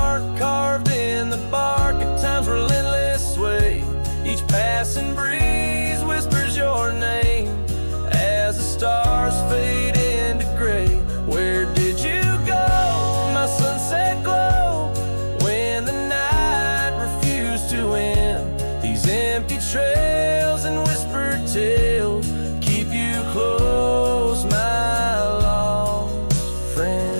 carved in the bark of time's relentless sway, each passing breeze whispers your name as the stars fade into gray. Where did you go, my sunset glow, when the night refused to end? These empty trails and whispered tales keep you close, my lost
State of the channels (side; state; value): both; inverted; correlation -1.00